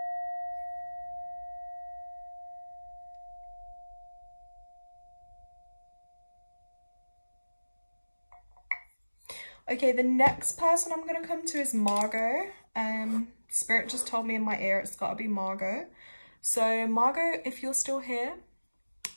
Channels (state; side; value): inverted; both; correlation -1.00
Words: Okay, the next person I'm going to come to is Margot. Spirit just told me in my ear it's got to be Margot. So Margot, if you're still here,